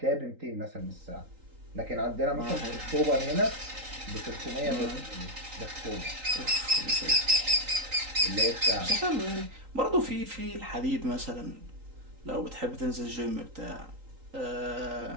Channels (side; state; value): left; late; 3.8 ms